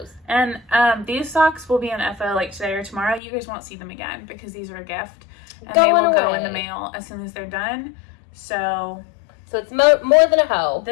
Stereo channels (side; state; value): right; drops out; at 3.2 s